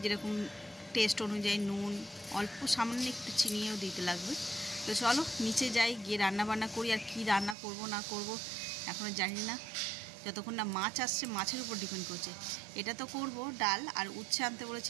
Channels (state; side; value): drops out; left; at 7.6 s